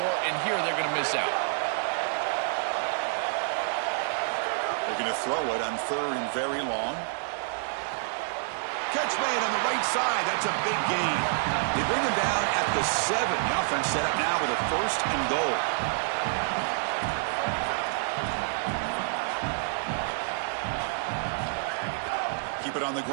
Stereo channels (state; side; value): silent; left; 59 dB below the other